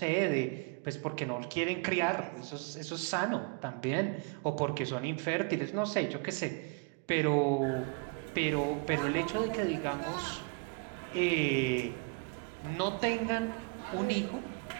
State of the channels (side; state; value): left; quieter; 31.4 dB